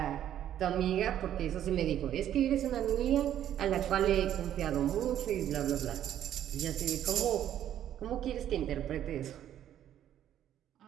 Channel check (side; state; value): left; quieter; 11.0 dB